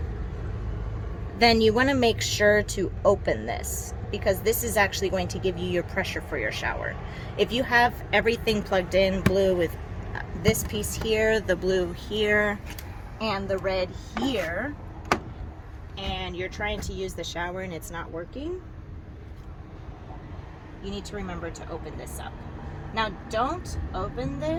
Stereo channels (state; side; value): identical; both; correlation 1.00